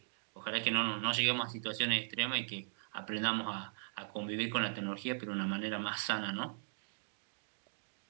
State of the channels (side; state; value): left; silent; digital silence